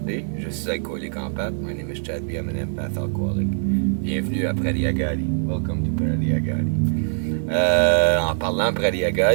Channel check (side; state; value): left; silent; 64 dB below the other